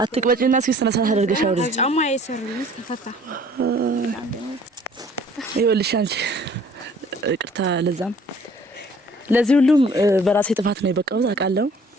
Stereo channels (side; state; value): both; normal; correlation 0.54